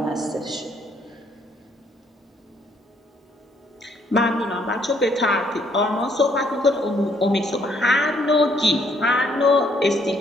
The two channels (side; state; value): both; normal; correlation 0.68